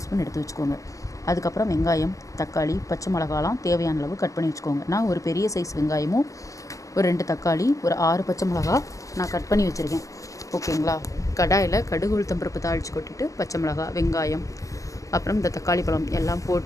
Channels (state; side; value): late; right; 0.16 ms